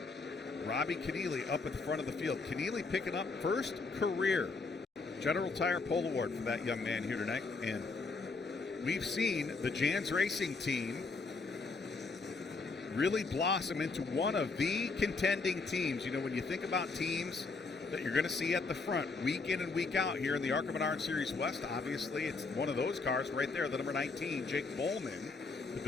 Robbie Keneally up at the front of the field. Keneally picking up first career General Tire Pole Award for that young man here tonight. And we've seen the Jans Racing team really blossom into one of the contending teams. You know, when you think about teams that you're going to see at the front week in and week out here in the ARCA Menards Series West, obviously it's one of those cars right there, the number 19, Jake Bowman, the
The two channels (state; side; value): quieter; right; 4.1 dB